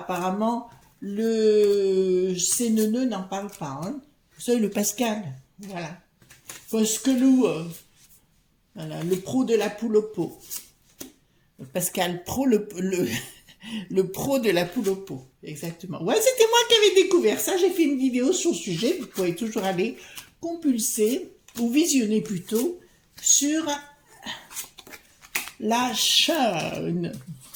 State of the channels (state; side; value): identical; both; correlation 1.00